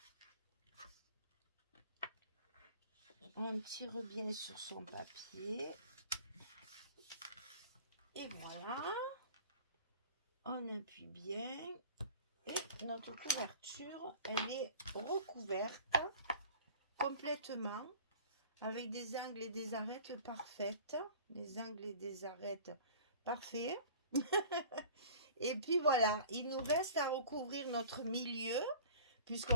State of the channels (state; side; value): inverted; both; correlation -0.43